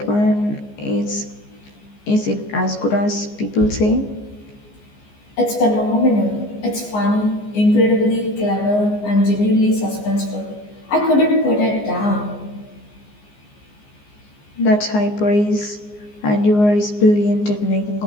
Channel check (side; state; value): right; late; 14 ms